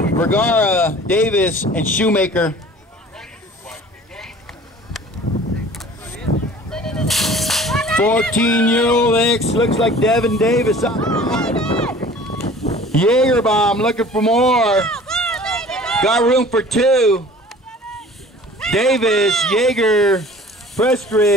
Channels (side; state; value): both; normal; correlation 0.46